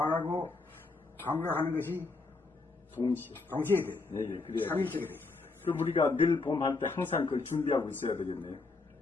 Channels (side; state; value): right; quieter; 3.8 dB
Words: 감각하는 것이 동시에 동시에 돼. 네, 그래. 삼일체가 돼. 그 우리가 늘봄할 때 항상 그걸 준비하고 있어야 되겠네요.